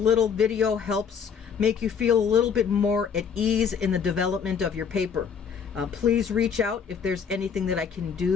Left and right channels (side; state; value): right; quieter; 6.8 dB